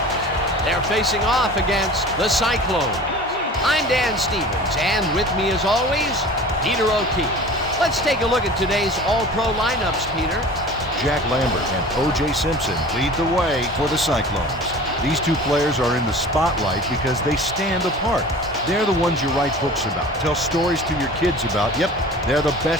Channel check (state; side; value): normal; both; correlation 0.41